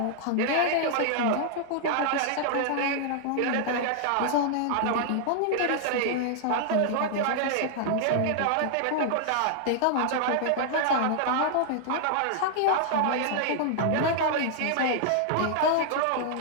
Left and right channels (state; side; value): different; both; correlation -0.01